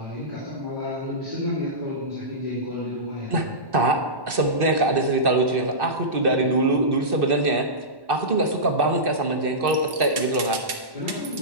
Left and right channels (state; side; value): late; left; 1.1 ms